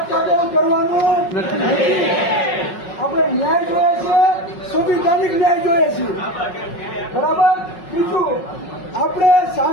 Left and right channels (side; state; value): right; late; 5.4 ms